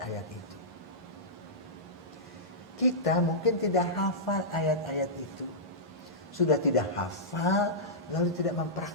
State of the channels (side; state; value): both; normal; correlation -0.15